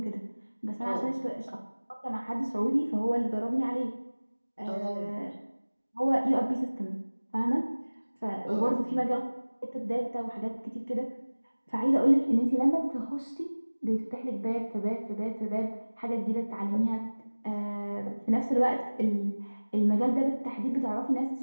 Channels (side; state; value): both; inverted; correlation -1.00